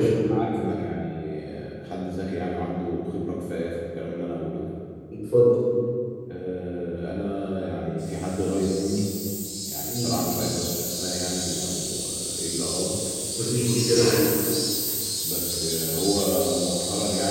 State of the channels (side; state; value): both; identical; correlation 1.00